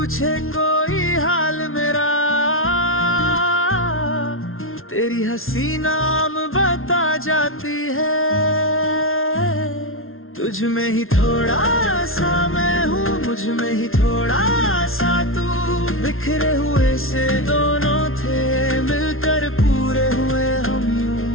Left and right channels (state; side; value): late; right; 0.61 ms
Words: कोई हाल मेरा, तेरी हंसी नाम बता जाती है। तुझ में ही थोड़ा सा मैं हूँ, मुझ में ही थोड़ा सा तू, बिखरे हुए से दोनों थे, मिलकर पूरे हुए हम